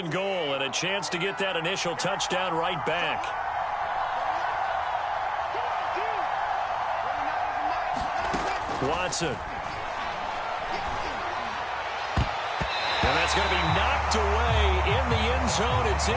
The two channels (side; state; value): both; identical; correlation 1.00